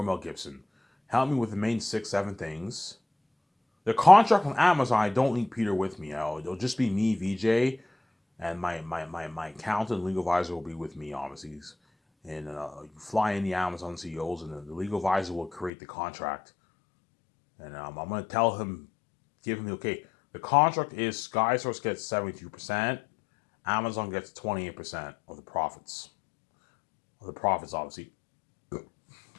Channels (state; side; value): drops out; right; at 15.7 s